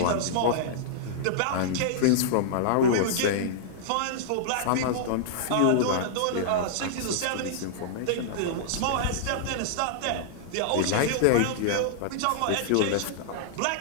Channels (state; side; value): different; both; correlation -0.02